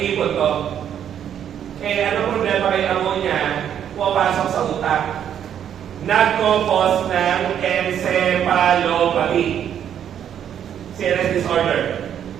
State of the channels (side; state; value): left; quieter; 9.4 dB